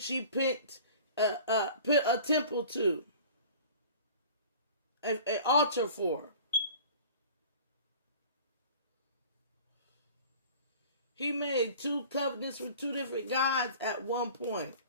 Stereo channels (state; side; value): inverted; both; correlation -0.44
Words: he put a temple to, an altar for. He made two covenants with two different gods at one point.